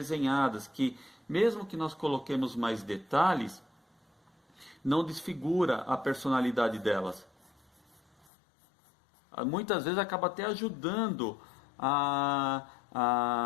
que mesmo que nós coloquemos mais detalhes, não desfigura a personalidade delas. Muitas vezes acaba até ajudando a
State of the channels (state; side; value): drops out; right; at 8.3 s